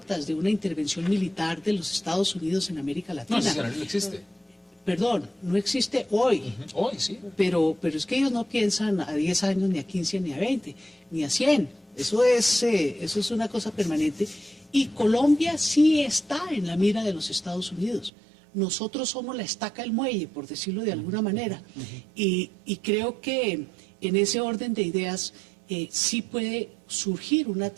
de una intervención militar de los Estados Unidos en América Latina. No, ese escenario no existe. Perdón, no existe hoy. Hoy, sí. Pero es que ellos no piensan a 10 años, ni a 15, ni a 20, ni a 100. Eso es una cosa permanente. Y Colombia sí está en la mira de los Estados Unidos. Nosotros somos la estaca del muelle, por decirlo de alguna manera. Y creo que en ese orden de ideas sí puede surgir una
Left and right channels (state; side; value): drops out; left; at 18.1 s